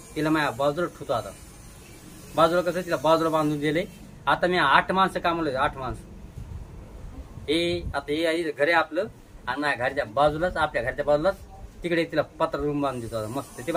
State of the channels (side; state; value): both; identical; correlation 1.00